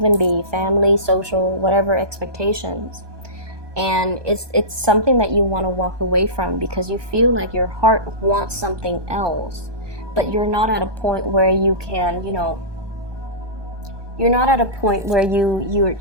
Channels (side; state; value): left; late; 1.2 ms